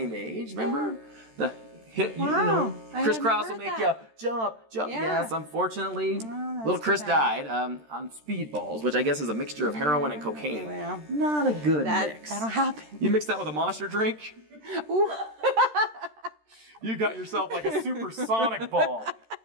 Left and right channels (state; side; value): late; left; 13 ms